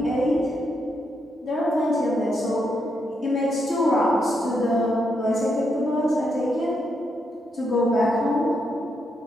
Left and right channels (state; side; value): normal; both; correlation 0.80